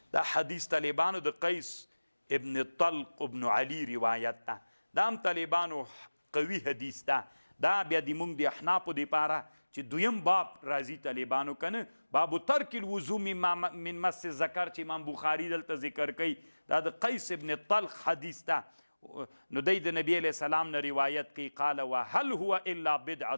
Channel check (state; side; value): inverted; both; correlation -1.00